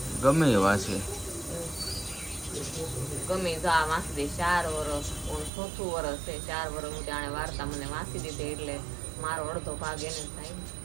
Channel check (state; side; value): drops out; left; at 5.5 s